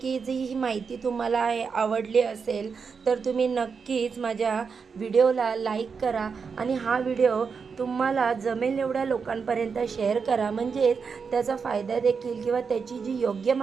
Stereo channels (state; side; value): quieter; left; 5.6 dB